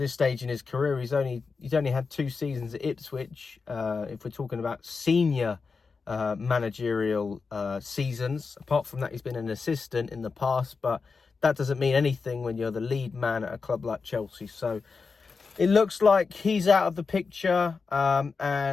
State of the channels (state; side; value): quieter; right; 4.7 dB